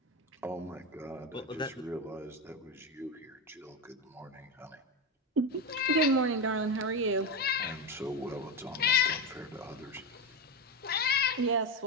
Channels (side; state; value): both; normal; correlation 0.14